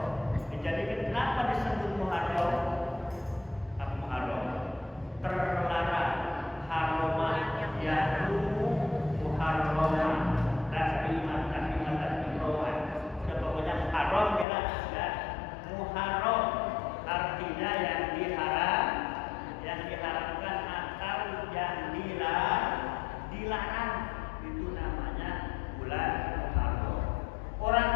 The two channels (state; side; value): drops out; right; at 14.5 s